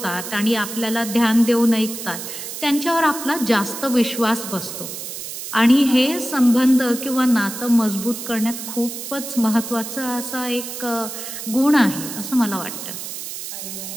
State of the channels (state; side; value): noise; right; hiss, 8 dB below the sound